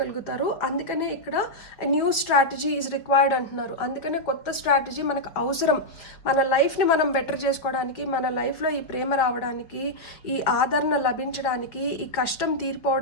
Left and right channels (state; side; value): late; right; 5.1 ms